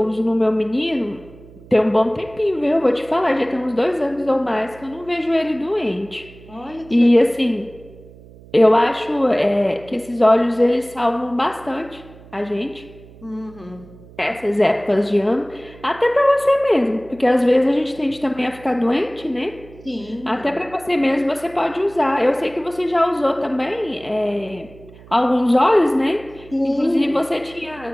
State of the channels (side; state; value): right; noise; hum, 22 dB below the sound